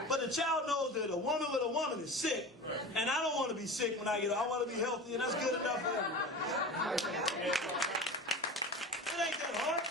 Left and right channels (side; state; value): both; normal; correlation 0.32